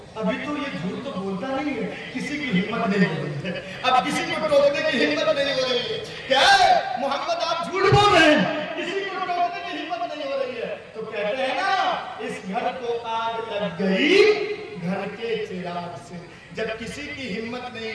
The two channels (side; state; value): both; identical; correlation 1.00